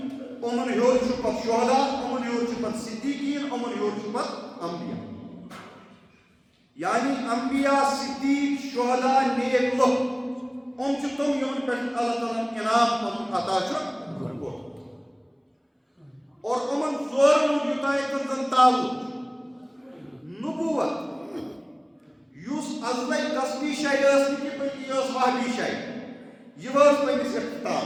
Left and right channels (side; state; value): both; identical; correlation 1.00